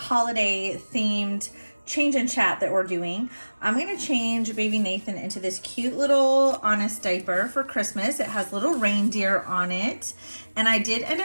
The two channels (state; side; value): inverted; both; correlation -1.00